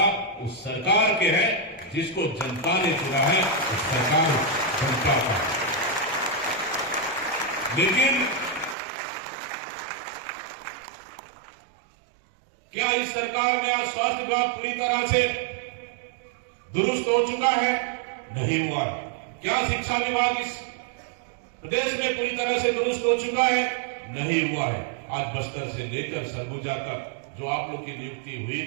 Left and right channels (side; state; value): left; drops out; at 8.8 s